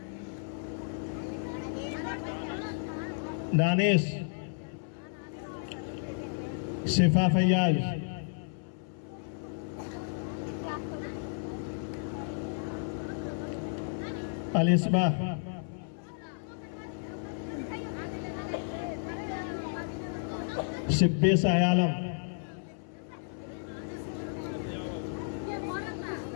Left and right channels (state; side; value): silent; right; 56 dB below the other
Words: दानिश, शिफा फैयाज, अलिस्बा, शिब्बी सायालम,